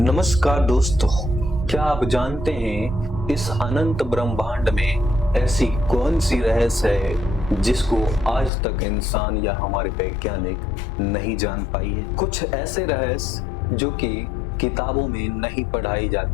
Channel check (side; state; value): right; drops out; at 8.5 s